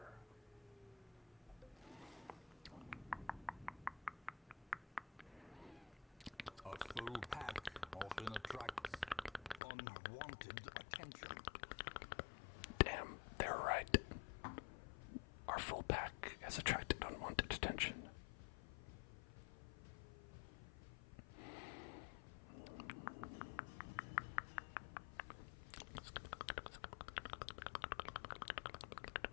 A full pack often attracts unwanted attention. Damn, they're right. Our full pack has attracted unwanted attention.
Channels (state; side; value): drops out; right; at 9.6 s